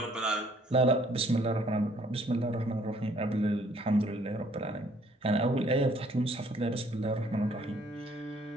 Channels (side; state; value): both; normal; correlation 0.62